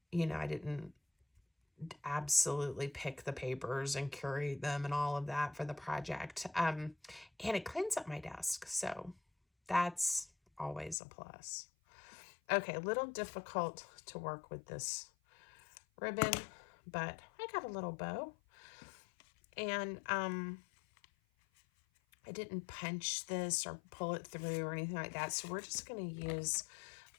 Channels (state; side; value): drops out; right; at 11.0 s